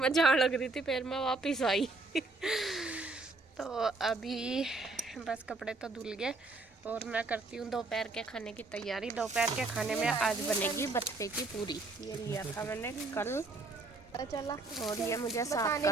लग रही थी फिर मैं वापिस आई तो अभी बस कपड़े तो धुल गए और मैं करती हूँ दोपहर के खाने की तैयारी। दोपहर के खाने में आज बनेगी बथुए की पूरी। ये लिया था मैंने कल चला और ये मुझे साफ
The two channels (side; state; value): left; quieter; 3.4 dB